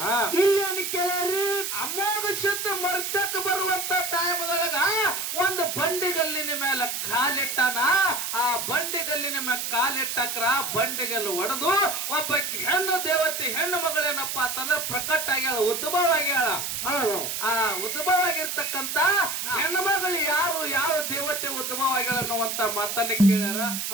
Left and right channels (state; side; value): noise; right; hiss, 3 dB below the sound